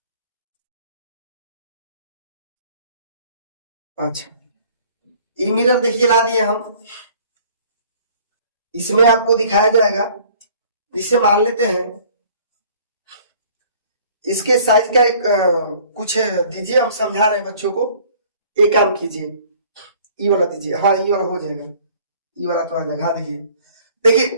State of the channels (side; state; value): both; inverted; correlation -0.54